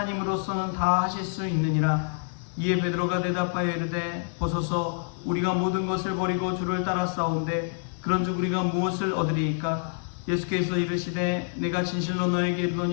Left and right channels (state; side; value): silent; right; 56 dB below the other